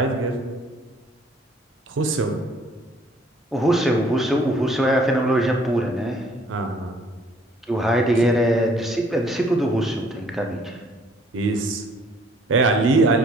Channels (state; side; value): normal; both; correlation 0.60